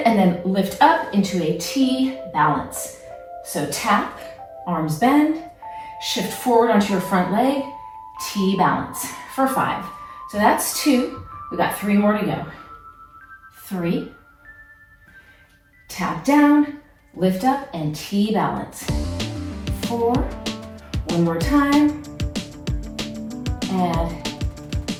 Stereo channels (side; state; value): both; identical; correlation 1.00